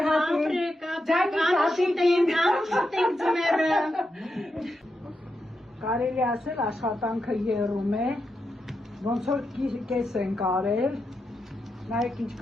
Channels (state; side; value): normal; both; correlation 0.86